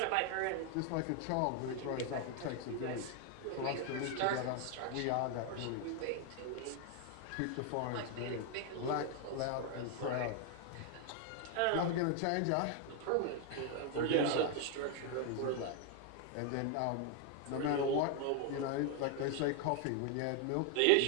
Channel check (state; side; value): different; both; correlation 0.01